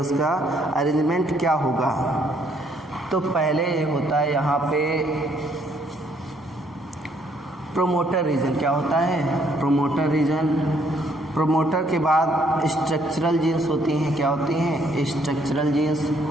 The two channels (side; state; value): both; normal; correlation 0.67